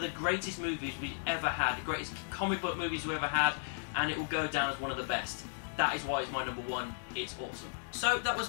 the greatest movies we ever had, the greatest comic book movies we ever had, and it will go down as one of the best. That is why it's my number 1. It's awesome. So that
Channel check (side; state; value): right; silent; digital silence